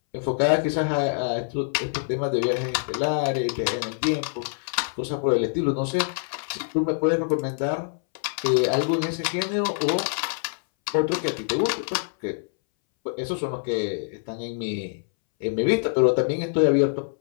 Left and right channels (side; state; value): right; silent; 62 dB below the other